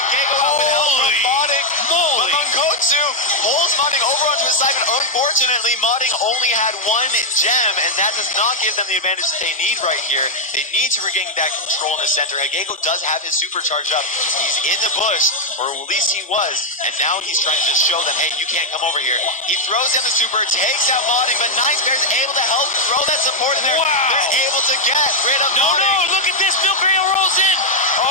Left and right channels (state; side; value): normal; both; correlation -0.01